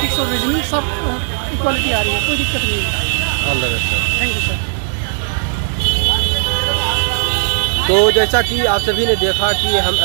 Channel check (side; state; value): left; silent; digital silence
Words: और रीजनिंग सब इक्वलिटी आ रही है, कोई दिक्कत नहीं है। All the best sir. Thank you sir. तो जैसा कि आप सभी ने देखा कि हम